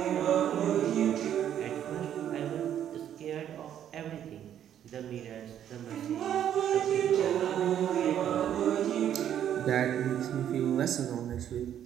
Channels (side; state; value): left; quieter; 10.1 dB